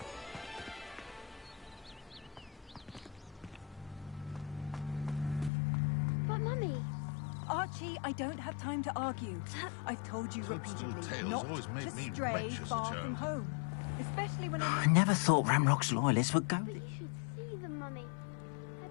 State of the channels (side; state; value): right; drops out; at 5.5 s